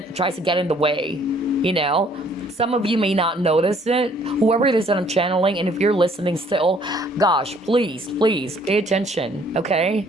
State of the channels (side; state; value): both; normal; correlation 0.61